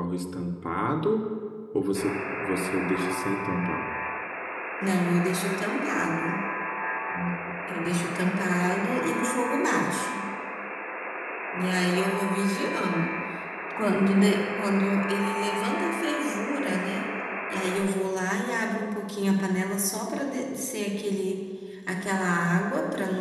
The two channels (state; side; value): identical; both; correlation 1.00